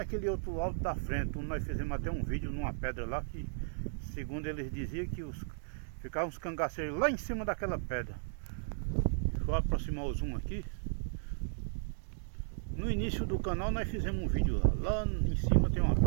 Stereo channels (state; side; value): silent; left; digital silence